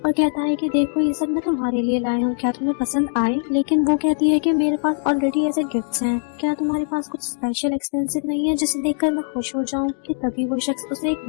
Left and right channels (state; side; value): silent; right; digital silence